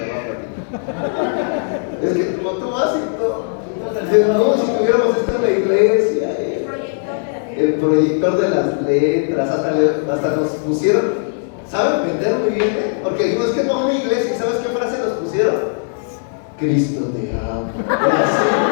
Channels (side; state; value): right; silent; digital silence